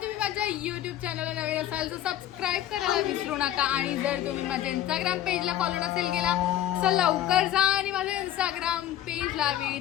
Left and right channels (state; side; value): quieter; right; 12.2 dB